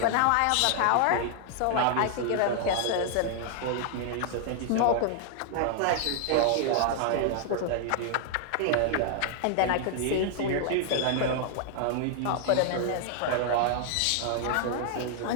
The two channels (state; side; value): different; both; correlation 0.00